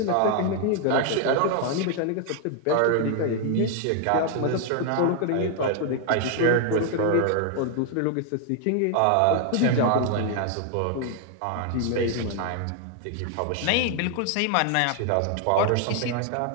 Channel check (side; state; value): both; different; correlation 0.00